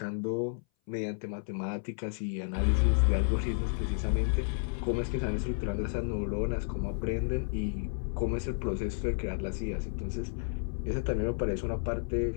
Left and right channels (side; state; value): right; silent; 57 dB below the other